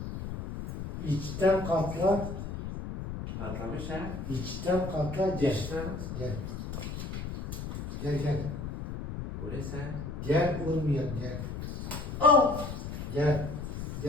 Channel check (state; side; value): noise; left; rumble, 6 dB below the sound